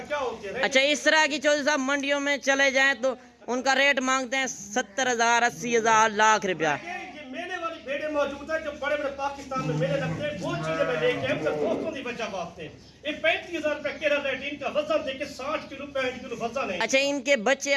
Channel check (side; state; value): both; identical; correlation 1.00